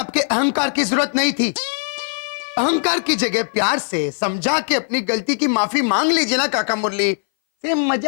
अहंकार की जरूरत नहीं थी। अहंकार की जगह प्यार से समझा के अपनी गलती की माफी मांग लीजिए ना काका मुरली, से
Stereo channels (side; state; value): right; silent; 60 dB below the other